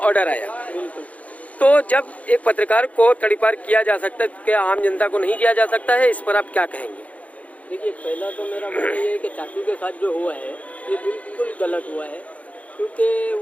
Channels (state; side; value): late; right; 0.068 ms